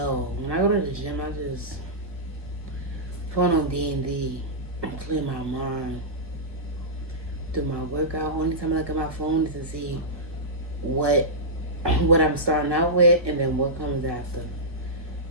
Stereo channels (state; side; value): late; left; 1.1 ms